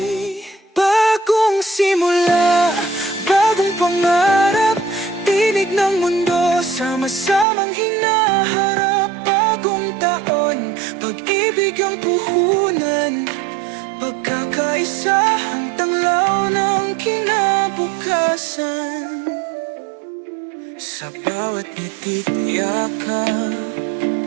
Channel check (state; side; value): drops out; left; at 7.5 s